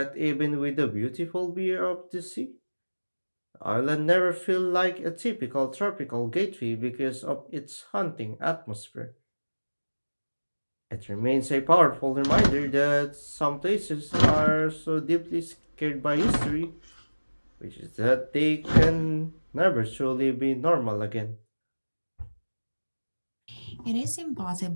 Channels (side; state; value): both; inverted; correlation -1.00